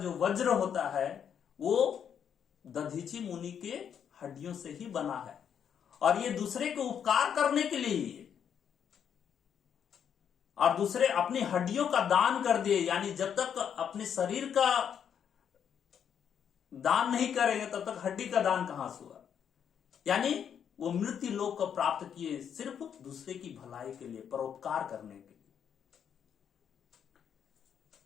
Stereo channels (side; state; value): right; quieter; 8.2 dB